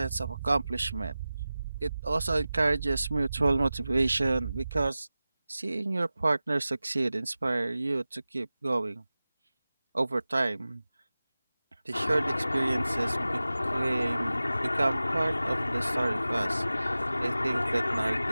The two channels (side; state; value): both; inverted; correlation -0.96